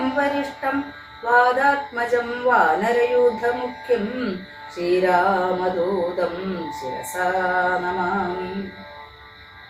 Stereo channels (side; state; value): both; identical; correlation 1.00